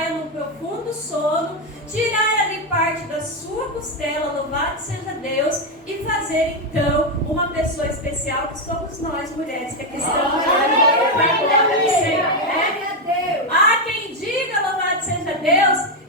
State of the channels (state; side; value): normal; both; correlation 0.06